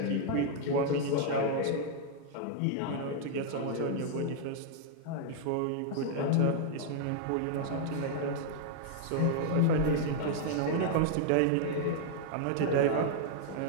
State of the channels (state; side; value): different; both; correlation 0.00